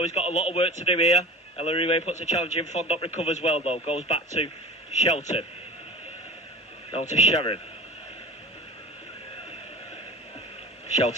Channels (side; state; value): both; normal; correlation 0.37